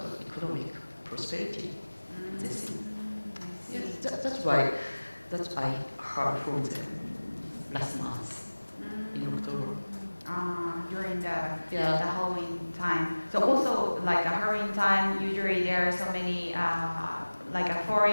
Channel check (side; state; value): both; inverted; correlation -1.00